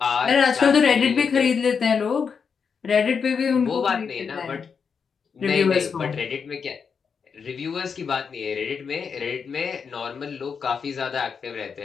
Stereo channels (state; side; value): quieter; right; 6.1 dB